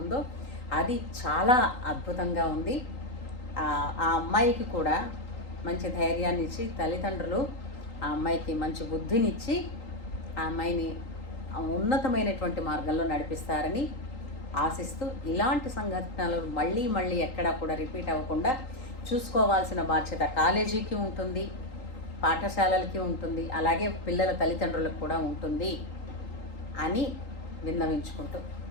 ఉందో అది చాలా అద్భుతంగా ఉంది. ఆ అమ్మాయికి కూడా మంచి ధైర్యాన్ని ఇచ్చి, తల్లిదండ్రులు ఆ అమ్మాయికి మంచి బుద్ధినిచ్చి ఆ అమ్మాయిని ఉన్నతమైనటువంటి మార్గంలో నడిపిస్తారని ఆశిస్తూ, ఇలాంటి సంఘటనలు మళ్ళీ ఎక్కడా కూడా రిపీట్ అవ్వకుండా చూసుకోవాల్సిన బాధ్యత కాలేజీకి ఉంటుంది, పాఠశాలలకి ఉంటుంది, అలాగే పిల్లల తల్లిదండ్రులకు కూడా ఉంటుంది అని విన్నవించుకుంటూ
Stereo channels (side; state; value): right; late; 3.8 ms